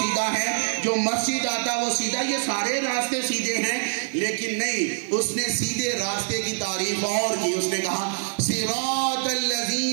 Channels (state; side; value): silent; left; 58 dB below the other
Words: ہے، جو مسجد آتا وہ سیدھا، یہ سارے راستے سیدھے ہیں۔ لیکن نہیں، اس نے سیدھے راستے کی تعریف اور کی، اس نے کہا صراط